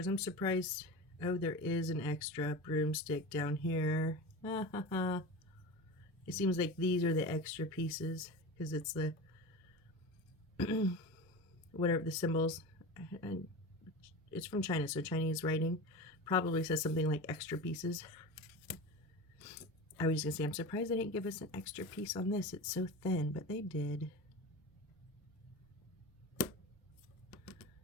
I'm surprised. Oh, there is an extra broomstick down here. It seems like these are the extra pieces because it's the whatever the symbols. And it's from China, so Chinese writing probably says something like extra pieces. I was just gonna say, I'm surprised they didn't give us an extra piece on this. It's so thin, but they did.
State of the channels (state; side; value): normal; both; correlation 0.29